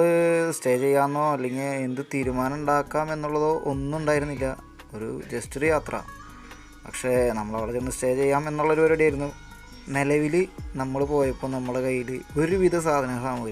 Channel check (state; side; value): identical; both; correlation 1.00